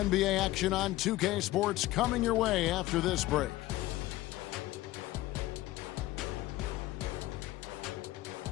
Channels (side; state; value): right; quieter; 16.9 dB